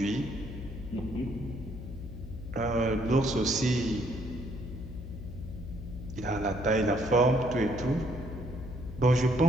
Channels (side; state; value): left; noise; hum, 10 dB below the sound